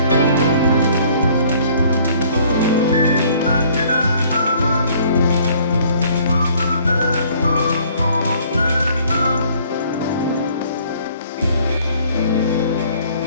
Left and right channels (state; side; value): inverted; both; correlation -0.58